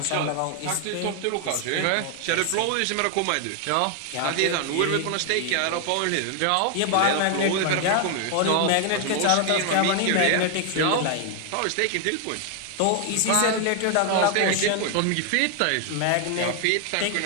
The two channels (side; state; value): both; different; correlation 0.00